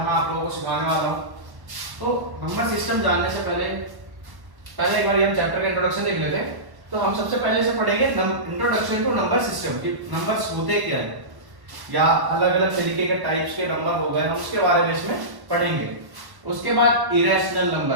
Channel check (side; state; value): left; late; 1.1 ms